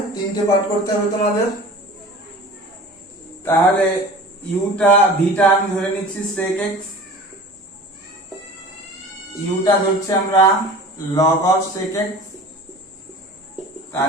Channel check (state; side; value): normal; both; correlation 0.40